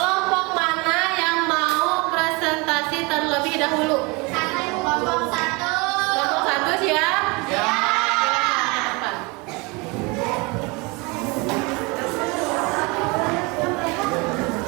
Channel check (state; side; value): quieter; left; 27.2 dB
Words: mana yang mau presentasi terlebih dahulu? Kelompok 1. Kelompok 1 siap?